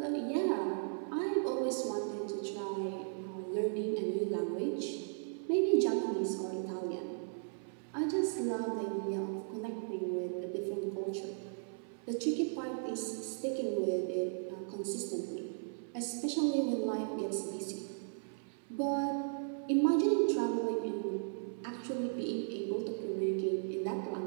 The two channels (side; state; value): left; silent; 54 dB below the other